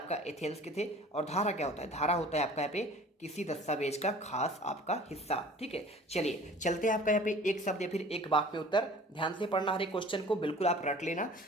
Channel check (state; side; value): normal; both; correlation 0.46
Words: एथेंस के थे। और धारा क्या होता है, धारा होता है आपका यहाँ पे किसी दस्तावेज का खास आपका हिस्सा, ठीक है। चलिए चलते हैं आपका यहाँ पे एक शब्द या फिर एक वाक्य में उत्तर, ध्यान से पढ़ना हर एक क्वेश्चन को, बिल्कुल आप रट लेना।